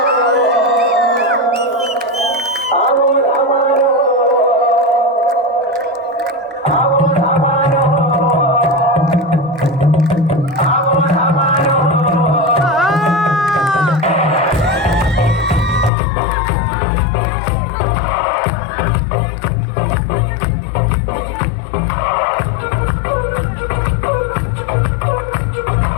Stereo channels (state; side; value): drops out; right; at 15.9 s